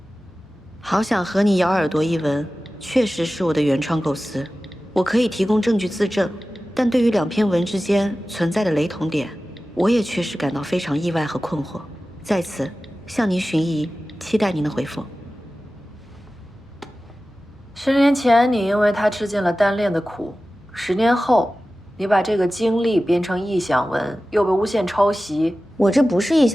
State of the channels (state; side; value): normal; both; correlation 0.95